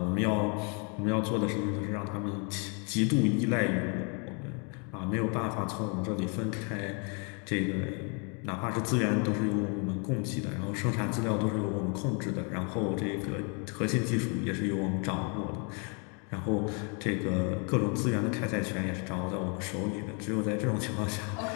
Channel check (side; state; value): right; quieter; 35.9 dB